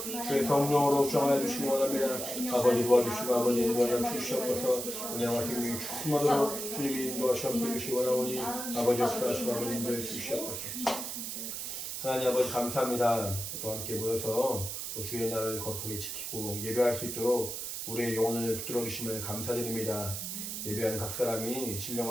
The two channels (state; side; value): noise; right; hiss, 5 dB below the sound